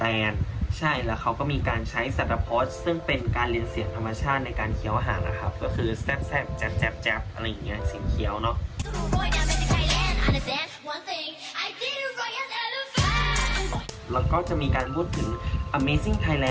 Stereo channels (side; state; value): both; identical; correlation 1.00